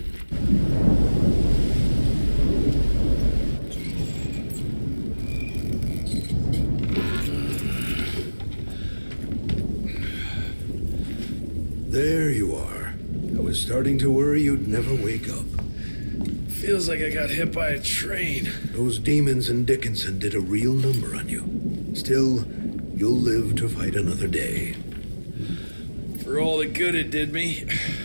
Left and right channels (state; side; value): inverted; both; correlation -1.00